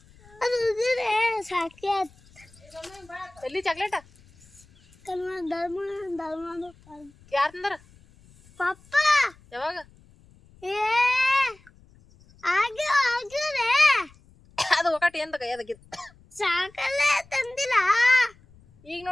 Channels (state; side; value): noise; left; rumble, 27 dB below the sound